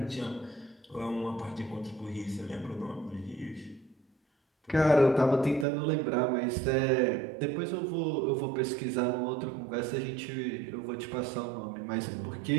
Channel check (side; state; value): left; drops out; at 5.7 s